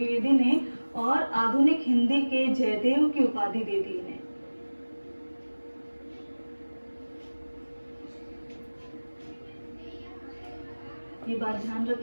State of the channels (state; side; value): inverted; both; correlation -1.00